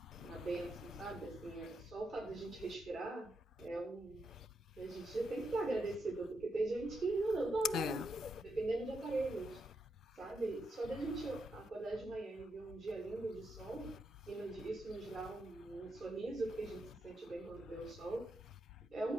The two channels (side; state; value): both; normal; correlation 0.83